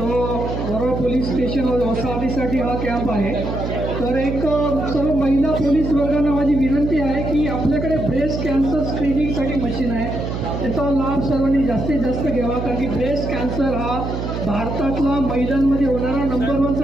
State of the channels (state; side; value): noise; right; hum, 4 dB below the sound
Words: वरोरा पोलीस स्टेशन वसाहतीसाठी हा कॅम्प आहे. तर एक सर्व महिला पोलीस वर्गांना माझी विनंती आहे की आपल्याकडे ब्रेस्ट कॅन्सर स्क्रीनिंगसाठी मशीन आहे, त्याचा लाभ सर्वांनी जास्तीत जास्त घ्यावा. कारण की ब्रेस्ट कॅन्सर हा भारतातला महिलांमध्ये होणारा नंबर